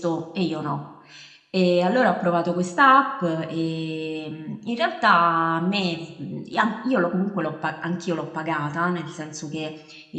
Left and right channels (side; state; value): both; identical; correlation 1.00